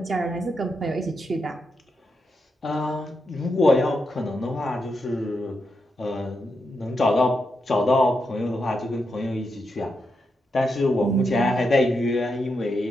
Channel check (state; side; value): normal; both; correlation 0.84